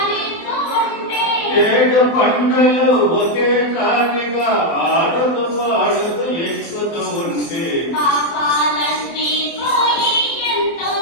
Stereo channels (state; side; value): late; right; 24 ms